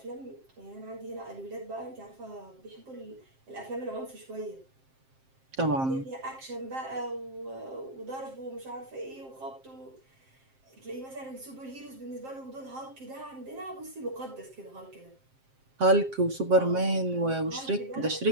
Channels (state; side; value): late; left; 7.6 ms